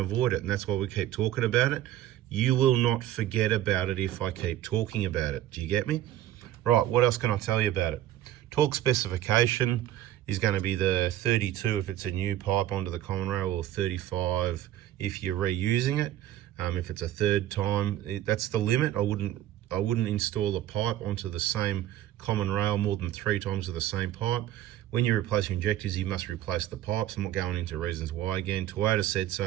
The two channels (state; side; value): quieter; left; 13.0 dB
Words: it, and that's why we keep talking about it. You will not forget about it if I keep talking about it. Do you get me? Right, what else can I tell you about it? Torque specification is going to be the 32 if it's a new pipe onto the common rail, or 35 if you're reusing it. If it's a third time, that's the limit. I wouldn't install a pipe onto the same common rail more than 3 times with the same pipe. When you replace your injectors, you must replace the pipes. I'm not going into reasons why again. Toyota said